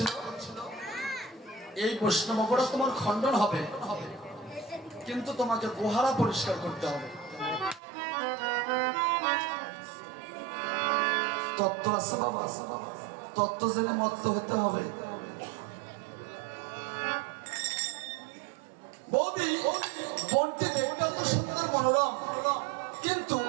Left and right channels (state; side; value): drops out; left; at 7.8 s